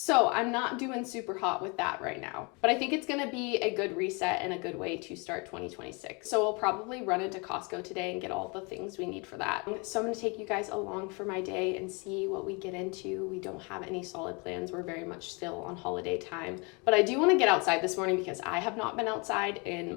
I'm not doing super hot with that right now. But I think it's gonna be a good reset and a good way to start 2026. So we'll probably run into Costco today and get all the things we need for that. So I'm gonna take you guys along for my day and see what we get into. We don't have any solid plans. We're very much still on holiday time. But I do wanna get outside this morning because I have not been outside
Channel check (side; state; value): right; quieter; 30.6 dB